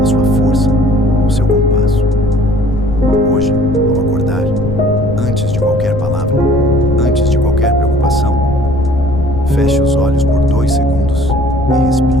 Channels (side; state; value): left; noise; rumble, 7 dB below the sound